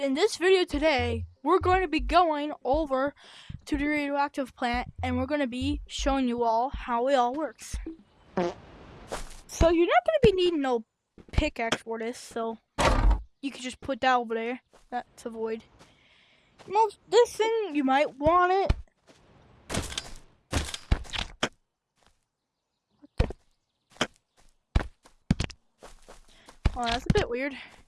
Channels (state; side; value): identical; both; correlation 1.00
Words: this video today, we're going to be going over to the radioactive plant and we're going to be showing you all how it all works. So you're not going to be needing no pickaxe for this, so you can just put that over there. That's a void. This thing, you might want it. Oh, that's a bit weird.